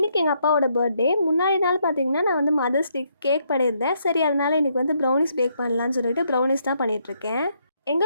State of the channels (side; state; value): both; inverted; correlation -0.74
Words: எங்கள் அப்பாவோட பர்த்டே. முன்னாடி நாள் பார்த்திங்கன்னா நான் வந்து மதர்ஸ் டேக்கு கேக் பண்ணியிருந்தேன். சரி, அதனால் இன்றைக்கி வந்து ப்ரௌனிஸ் பேக் பண்ணலான்னு சொல்லிட்டு ப்ரௌனிஸ் தான் பண்ணிகிட்ருக்கேன்.